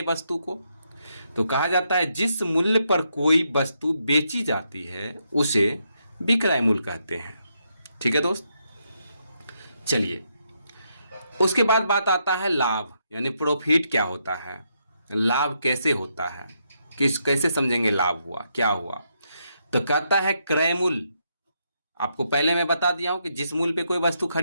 वस्तु को। तो कहा जाता है जिस मूल्य पर कोई वस्तु बेची जाती है उसे विक्रय मूल्य कहते हैं। ठीक है दोस्त, चलिए उसके बाद बात आता है लाभ, यानी प्रॉफिट क्या होता है, लाभ कैसे होता है, कैसे समझेंगे लाभ हुआ क्या हुआ। तो कहता है क्रय मूल्य, आपको पहले मैं बता दिया हूं कि जिस मूल्य पे कोई वस्तु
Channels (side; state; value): both; inverted; correlation -0.79